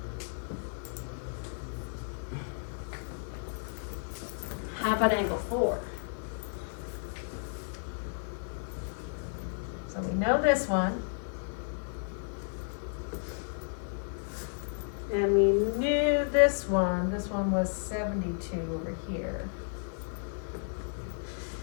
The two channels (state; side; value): silent; right; 56 dB below the other